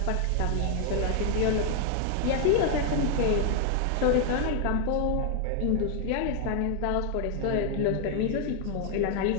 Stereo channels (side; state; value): both; different; correlation 0.00